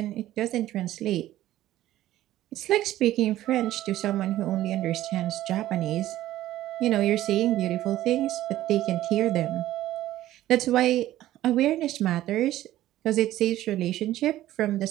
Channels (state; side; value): quieter; left; 14.3 dB